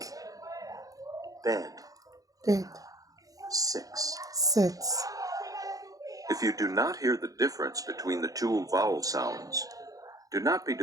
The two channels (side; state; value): left; late; 0.17 ms